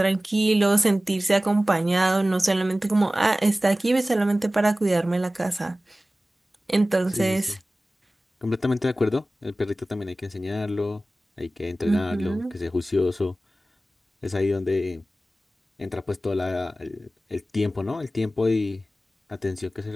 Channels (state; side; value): normal; both; correlation 0.96